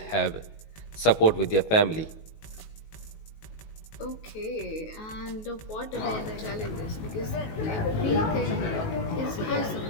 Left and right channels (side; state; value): right; late; 19 ms